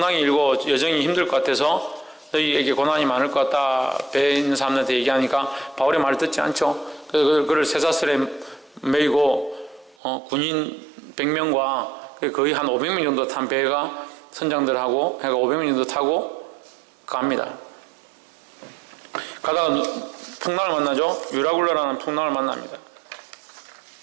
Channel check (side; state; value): left; drops out; at 10.0 s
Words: 일고 여정이 힘들 것 같아서 너희에게 고난이 많을 것 같다. 배에 있는 사람들한테 얘기하니까 바울의 말을 듣지 않죠. 그래서 그를 쇠사슬에 매이고 군인 100명과 거의 한 500명 정도 탄 배가 선장들하고 해가 500명 정도 타고 갑니다. 가다가 풍랑을 만나죠. 유라굴라라는 풍랑을 만납니다.